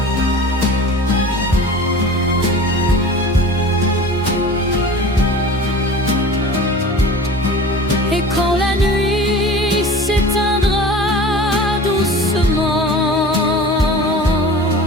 Et quand la nuit s'éteindra doucement,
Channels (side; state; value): both; normal; correlation 0.39